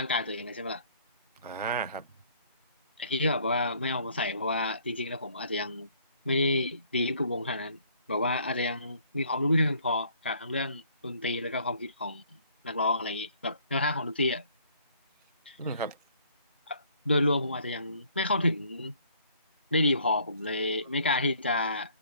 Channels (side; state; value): both; inverted; correlation -0.60